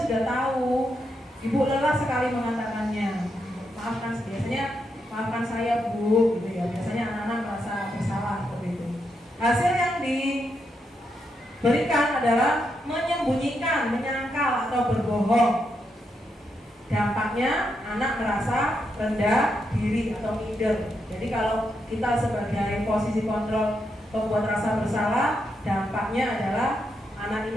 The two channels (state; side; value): normal; both; correlation 0.82